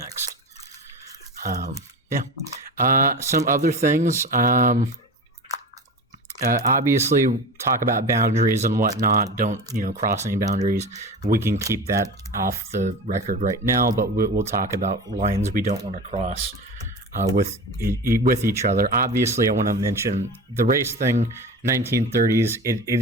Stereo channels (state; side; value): normal; both; correlation 0.30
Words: Some other things. Obviously, talk about boundaries and whatnot. Don't cross any boundaries. We can keep that off the record right now, but we'll talk about lines we don't want to cross with each other. Obviously, I want to mention the race thing. 1930s.